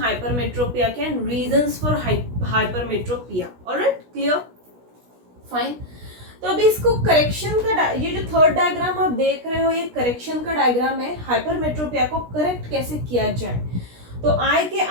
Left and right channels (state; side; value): late; left; 16 ms